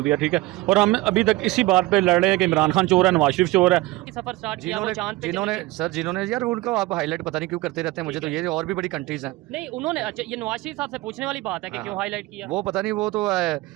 دیا, ٹھیک ہے, اور ہم ابھی تک اسی بات پہ لڑ رہے ہیں کہ عمران خان چور ہے, نواز شریف چور ہے. سفر اسٹارٹ کیا وہ چاند پہ, جنہوں نے یار ان کو آپ ہائی لائٹ پتہ نہیں کیوں کرتے رہتے ہیں, مجھے تو یہ اور بھی بڑی کنٹریز ہیں. نہیں انہوں نے, اچھا یہ نواز شریف صاحب سے پوچھنے والی بات ہے کہ کیوں ہائی لائٹ کیا, وہ پتہ نہیں, وہ تو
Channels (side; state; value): left; quieter; 19.8 dB